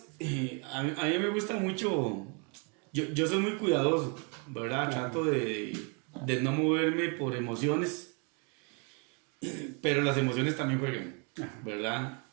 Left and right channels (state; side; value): quieter; left; 35.6 dB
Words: a mí me gusta mucho, yo soy muy cuidadoso, ¿verdad? Trato de no moverme por emociones, pero las emociones también juegan, ¿verdad?